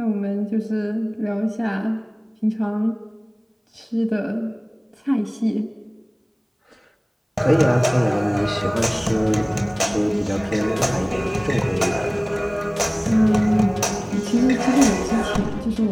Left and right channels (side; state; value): both; identical; correlation 1.00